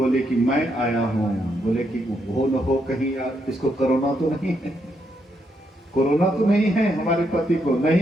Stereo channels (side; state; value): both; normal; correlation 0.78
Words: कि मैं आया हूं, बोले कि हो न हो कहीं यार इसको कोरोना तो नहीं है, कोरोना तो नहीं है हमारे पति को,